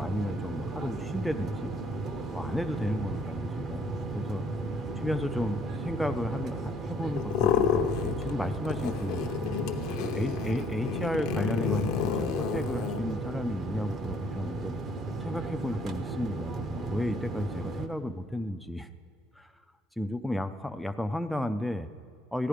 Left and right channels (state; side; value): normal; both; correlation 0.63